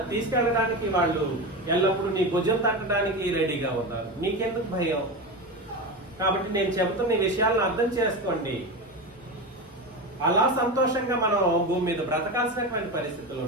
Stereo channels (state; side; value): normal; both; correlation 0.21